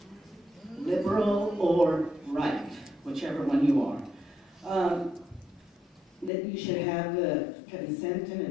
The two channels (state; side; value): drops out; right; at 6.3 s